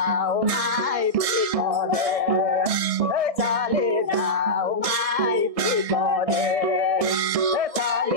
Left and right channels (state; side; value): late; left; 1.6 ms